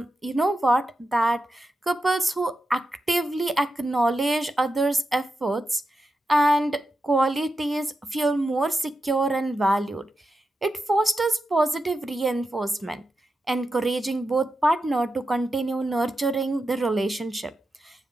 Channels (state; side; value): normal; both; correlation 0.89